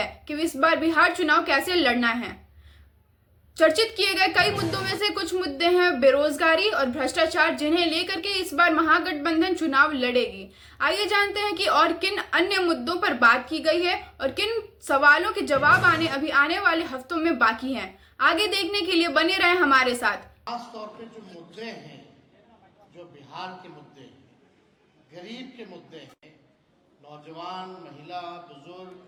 कि इस बार बिहार चुनाव कैसे लड़ना है। चर्चित किए गए कई मुद्दों में से कुछ मुद्दे हैं बेरोजगारी और भ्रष्टाचार, जिन्हें लेकर के इस बार महागठबंधन चुनाव लड़ेगी। आइए जानते हैं कि और किन अन्य मुद्दों पर बात की गई है और किन सवालों के जवाब अभी आने वाले हफ्तों में बाकी हैं। आगे देखने के लिए बने रहें हमारे साथ। खास तौर पे जो मुद्दे हैं, जो बिहार के मुद्दे हैं, गरीब के मुद्दे हैं, नौजवान, महिला, बुजुर्ग,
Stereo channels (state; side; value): identical; both; correlation 1.00